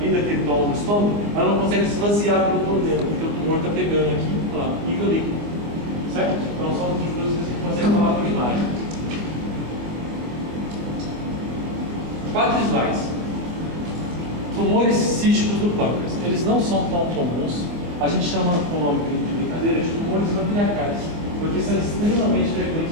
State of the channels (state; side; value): late; left; 25 ms